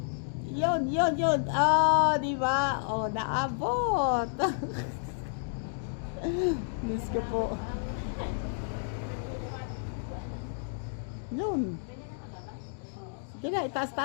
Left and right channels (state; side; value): silent; right; digital silence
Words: Yun. Oh, di ba? Oh, naabot. Diyos ko po. Yun. Sige na,